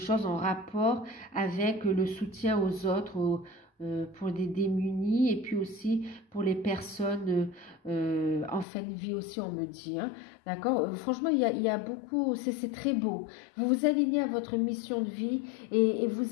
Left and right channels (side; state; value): right; drops out; at 8.7 s